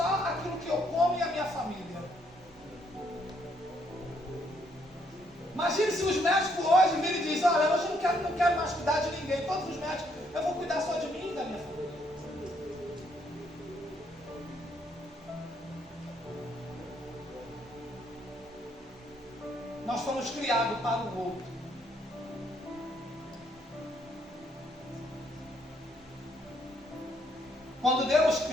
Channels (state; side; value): normal; both; correlation 0.71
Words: aquilo que eu como e a minha família. Imagine se os médicos hoje virem e dizem: olha, hoje eu não quero mais cuidar de ninguém, todos os médicos, eu vou cuidar só de mim e da minha família. Nós fomos criados para o outro. Quando Deus